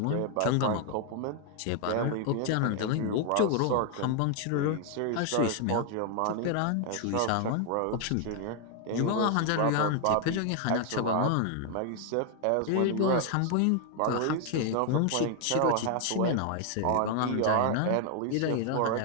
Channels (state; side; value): different; both; correlation 0.00